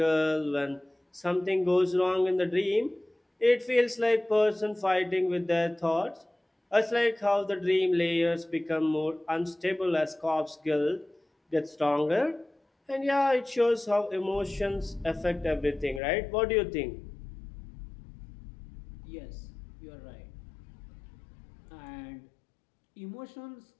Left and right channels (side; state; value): right; drops out; at 16.0 s